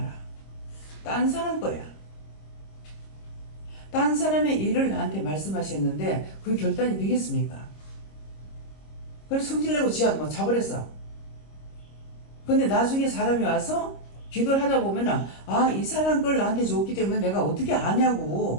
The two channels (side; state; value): right; late; 26 ms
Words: 딴 사람 거야. 딴 사람의 일을 나한테 말씀하셨는데 그 결단이 되겠습니까? 그래서 성질내고 지하 뭐 자버렸어. 근데 나중에 사람이 와서 기도를 하다 보면은 아, 이 사람 걸 나한테 줬기 때문에 내가 어떻게